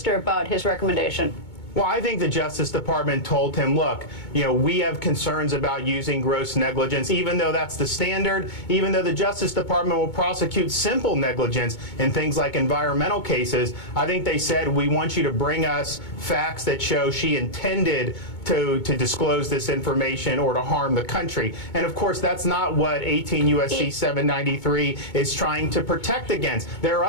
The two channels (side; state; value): right; late; 2.2 ms